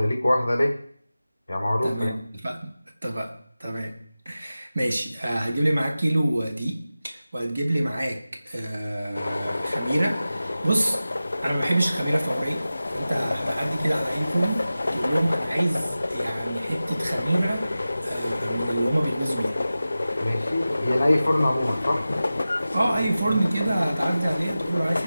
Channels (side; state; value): both; inverted; correlation -0.95